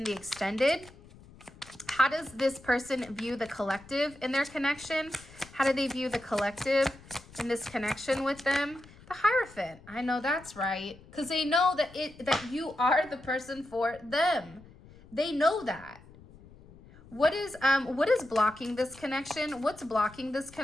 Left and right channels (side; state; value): left; noise; rumble, 22 dB below the sound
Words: the extended. How does this person view the collective in their connection? How do they view the collective in this connection with them? The Hierophant. I know that's right. Because they know that you are the person for them. They know that. What is blocking this connection? What's blocking this